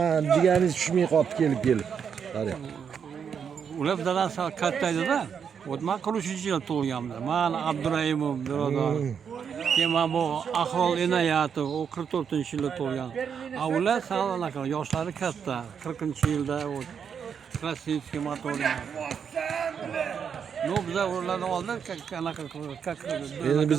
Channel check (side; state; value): left; quieter; 7.2 dB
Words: deganingiz tushmay qopti kelib. Qarang. Ular dadasi katta edi-da. O'tman 43-yil tug'ilganman. Men Abduraimov birodar. Keyin bu Ahrol Inoyatov, o 44-yilda tug'ilgan. Ular sanaqa yoshlari katta. 40-yilda o Krasnitskiy motorli. No, biza ulardan oldin qanaqa Endi